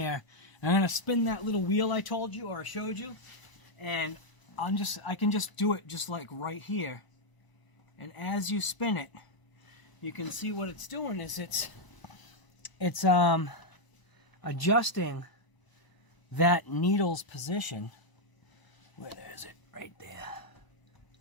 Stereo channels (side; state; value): right; late; 1.0 ms